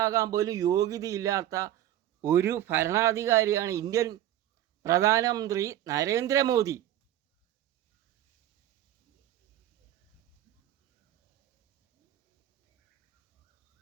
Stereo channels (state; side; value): quieter; left; 12.7 dB